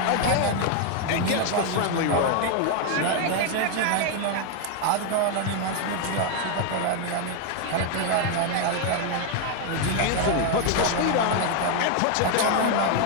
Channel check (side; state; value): both; different; correlation 0.01